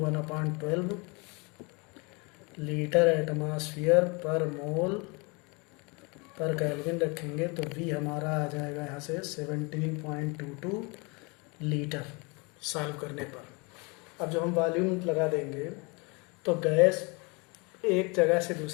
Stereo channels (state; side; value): quieter; right; 29.6 dB